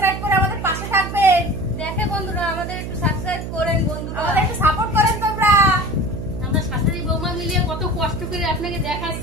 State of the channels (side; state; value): right; noise; hum, 6 dB below the sound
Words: করে আমাদের পাশে থাকবেন। দেখে বন্ধুরা আমাদের একটু সাবস্ক্রাইব করেন বন্ধুরা, আমাদের একটু সাপোর্ট করেন তোমরা। আমরা শাশুড়ি বৌমা মিলিয়ে কত কষ্ট করে আপনাকে